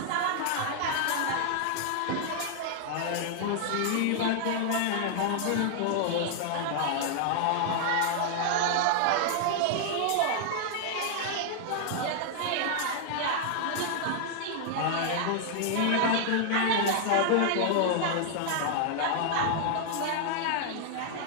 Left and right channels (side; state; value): both; different; correlation 0.00